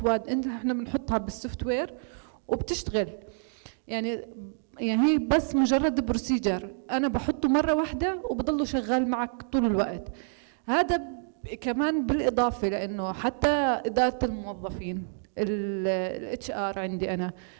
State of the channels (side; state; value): left; silent; digital silence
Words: احنا بنحطها بالسوفت وير وبتشتغل. يعني هي بس مجرد بروسيجر انا بحطه مره واحده وبضله شغال معك طول الوقت. هذا كمان بالإضافة لأنه حتى إدارة الموظفين، الاتش ار عندي